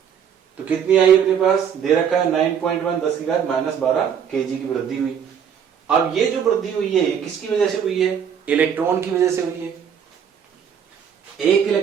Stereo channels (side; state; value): left; quieter; 7.9 dB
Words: तो कितनी आई अपने पास? दे रखा है 9.1 10⁻12 केजी की वृद्धि हुई। अब ये जो वृद्धि हुई है किसकी वजह से हुई है? इलेक्ट्रॉन की वजह से हुई है। एक